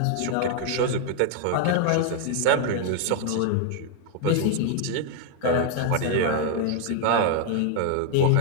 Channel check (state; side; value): different; both; correlation 0.00